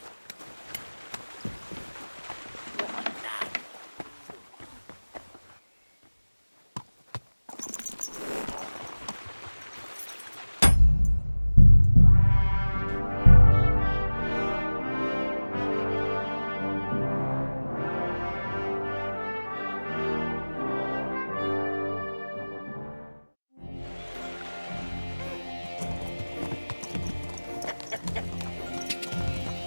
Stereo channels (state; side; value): inverted; both; correlation -1.00